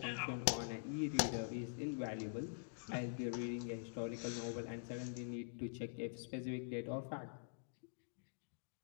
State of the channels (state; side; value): silent; right; digital silence